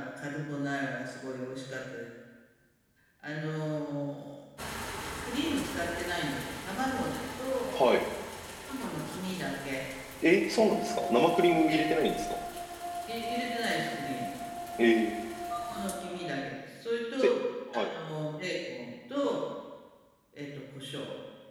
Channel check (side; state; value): both; identical; correlation 1.00